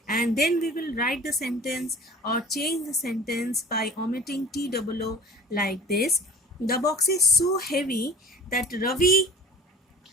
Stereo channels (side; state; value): both; normal; correlation 0.42